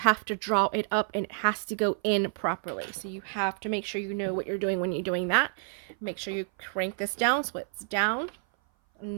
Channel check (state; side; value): silent; left; 57 dB below the other